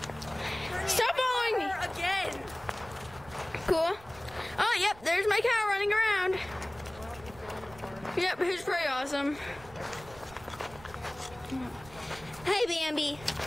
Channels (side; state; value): right; noise; rumble, 20 dB below the sound